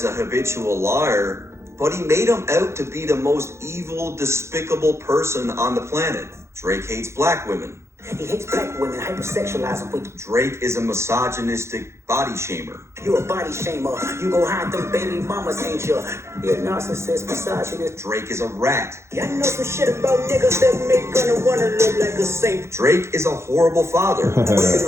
a habitual liar, but he made him out to be the most evil, despicable person on the planet. Drake hates black women. He hates black women, hypersexualize them with. Drake is a misogynistic body shamer. You a body shamer. You go hide them baby mamas, ain't you? You're a narcissist, misogynist. Drake is a rat. Yeah, I know some shit about niggas that make gonna wanna look like a saint. Drake is a horrible father. Waking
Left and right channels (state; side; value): late; left; 0.13 ms